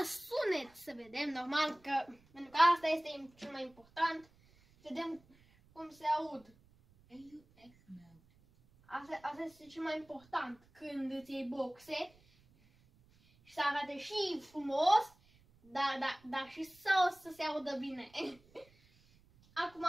sunet să vedem, normal, pentru că asta este cel mai important. Vedem cum se aud. Asta este cel mai important când îți iei boxe. și să arate și frumos, dar și să se audă bine. Acum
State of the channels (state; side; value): noise; right; rumble, 29 dB below the sound